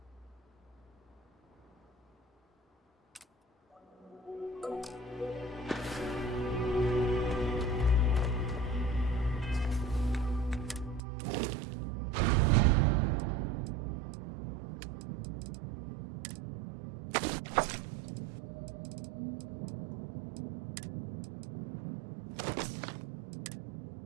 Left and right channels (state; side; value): drops out; left; at 11.0 s